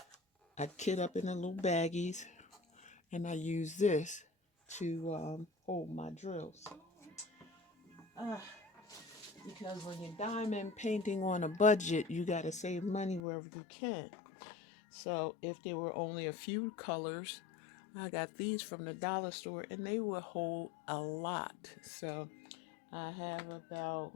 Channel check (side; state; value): right; drops out; at 13.2 s